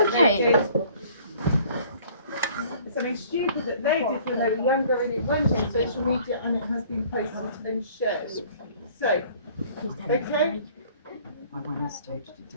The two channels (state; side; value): inverted; both; correlation -0.54